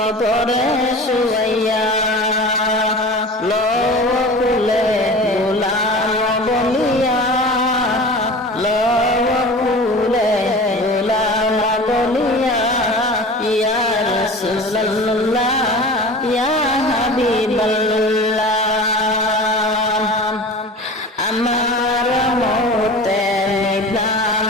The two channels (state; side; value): normal; both; correlation 0.37